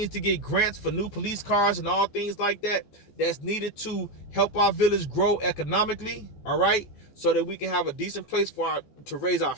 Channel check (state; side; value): late; right; 14 ms